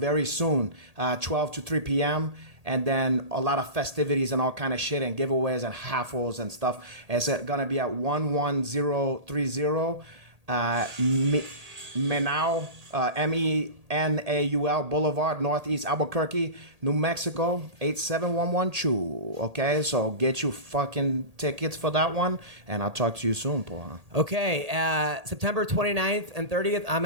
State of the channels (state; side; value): late; left; 1.8 ms